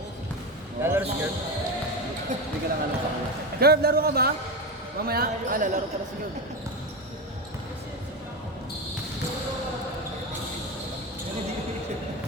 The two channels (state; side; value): normal; both; correlation 0.18